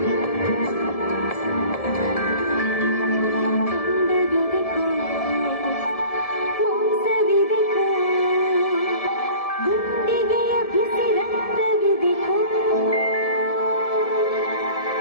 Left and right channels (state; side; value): late; right; 1.7 ms